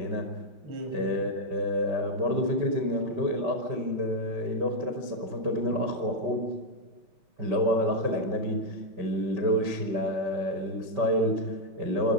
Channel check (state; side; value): late; left; 5.2 ms